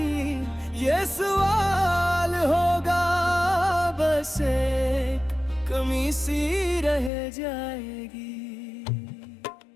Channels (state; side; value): drops out; right; at 7.1 s